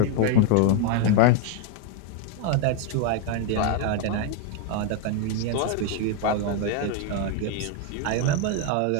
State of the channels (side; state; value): both; different; correlation 0.01